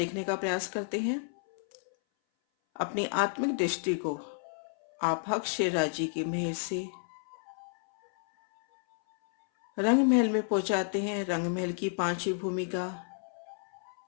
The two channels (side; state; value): right; silent; 57 dB below the other